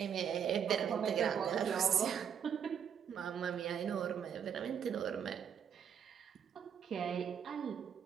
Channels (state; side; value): quieter; left; 8.1 dB